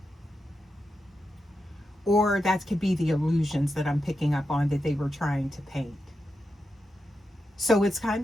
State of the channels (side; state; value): both; normal; correlation 0.88